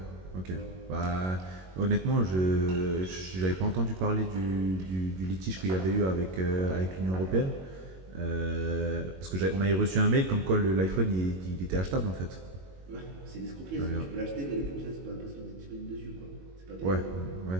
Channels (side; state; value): left; late; 22 ms